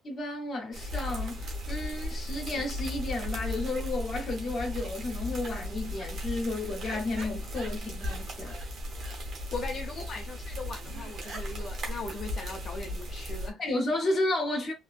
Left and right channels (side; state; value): both; normal; correlation 0.78